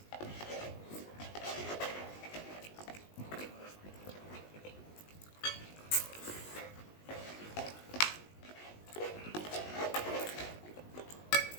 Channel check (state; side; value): late; right; 19 ms